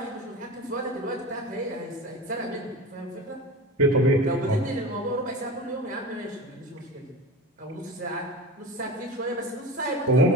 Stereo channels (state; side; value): normal; both; correlation 0.30